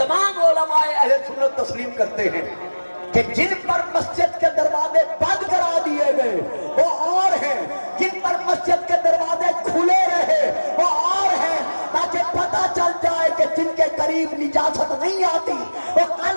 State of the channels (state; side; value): inverted; both; correlation -1.00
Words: علماء اہل سنت تسلیم کرتے ہیں کہ جن پر مسجد کے دروازے بند کرا دیے گئے وہ اور ہیں. جن پر مسجد کے دروازے کھلے رہے وہ اور ہیں, تاکہ پتہ چل جائے کہ جن کے قریب نجاست نہیں آتی وہ کل